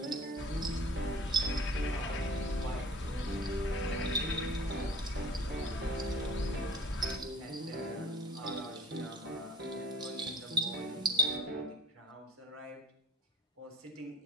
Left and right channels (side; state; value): both; normal; correlation 0.48